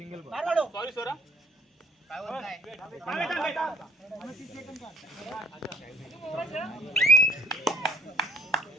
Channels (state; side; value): normal; both; correlation 0.57